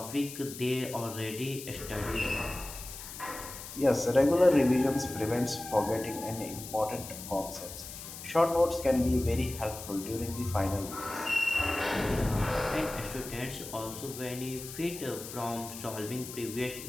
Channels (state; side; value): noise; left; hiss, 11 dB below the sound